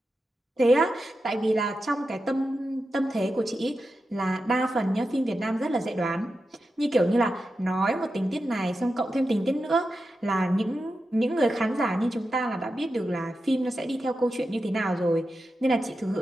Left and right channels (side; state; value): both; normal; correlation 0.90